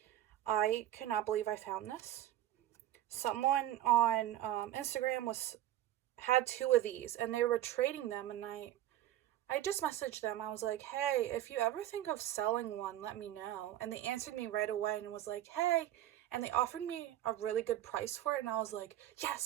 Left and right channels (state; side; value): quieter; left; 13.1 dB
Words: I cannot believe I found this. Someone on Instagram had two of these and they were trading them, and I just messaged them. I was like, hey, if you ever think of selling one, let me know. And they answered me right away and was like, hey, and they offered me a really good price for it, and I was like,